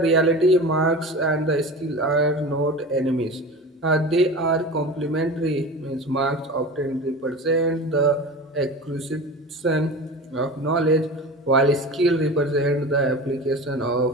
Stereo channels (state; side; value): normal; both; correlation 0.33